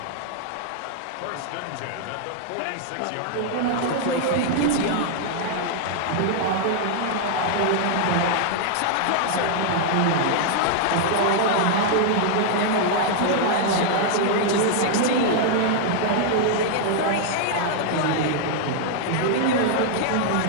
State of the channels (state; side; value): different; both; correlation -0.01